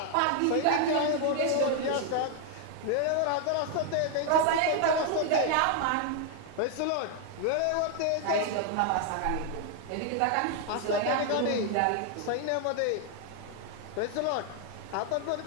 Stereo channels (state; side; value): different; both; correlation 0.00